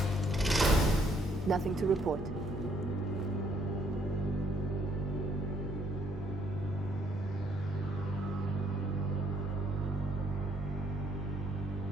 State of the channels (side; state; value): both; normal; correlation 0.68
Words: Nothing to report.